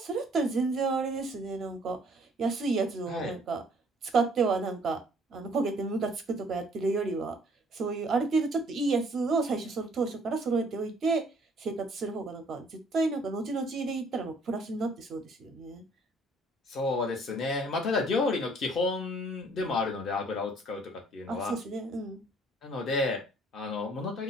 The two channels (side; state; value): both; normal; correlation 0.60